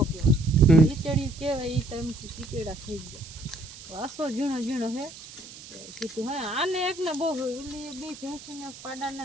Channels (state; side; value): noise; right; hiss, 16 dB below the sound